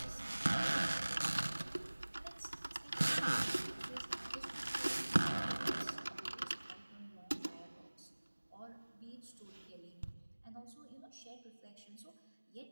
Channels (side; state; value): both; inverted; correlation -1.00